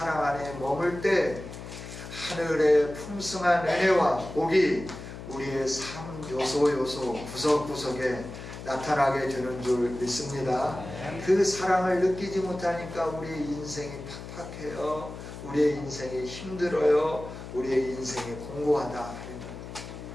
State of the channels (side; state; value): left; noise; hum, 11 dB below the sound